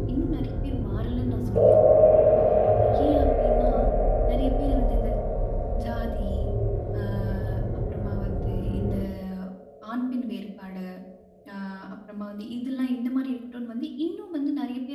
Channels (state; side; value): identical; both; correlation 1.00